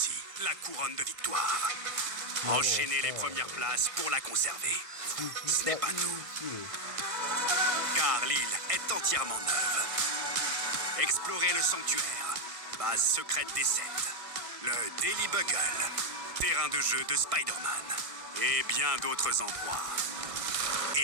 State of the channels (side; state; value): left; late; 1.5 ms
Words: la couronne de victoire. Enchaînez les premières places pour la conserver. Ce n'est pas tout, car l'île est entièrement neuve. Explorez le sanctuaire, base secrète des 7, le Daily Bugle, terrain de jeu de Spider-Man, et bien d'autres endroits.